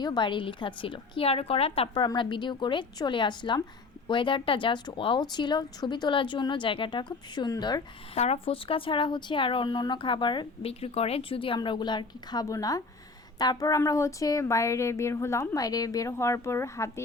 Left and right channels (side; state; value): right; quieter; 4.0 dB